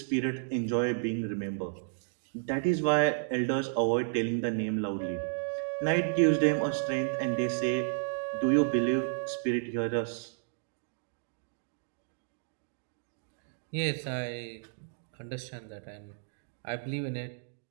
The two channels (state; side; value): silent; left; digital silence